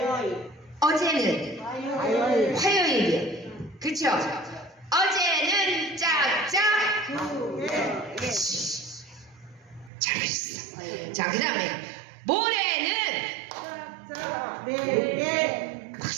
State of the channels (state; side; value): drops out; left; at 9.9 s